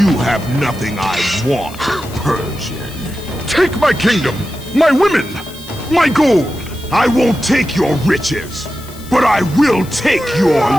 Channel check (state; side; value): noise; left; hiss, 19 dB below the sound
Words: You have nothing I want, Persian. Take my kingdom, my women, my gold. I won't take your riches, but I will take your